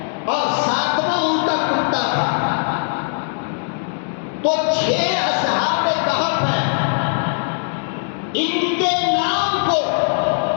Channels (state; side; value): silent; right; 66 dB below the other